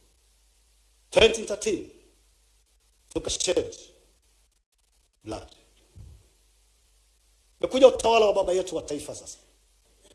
2013 tukashed blood. Mekuja utawala wa baba yetu wa taifa sasa.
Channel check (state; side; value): identical; both; correlation 1.00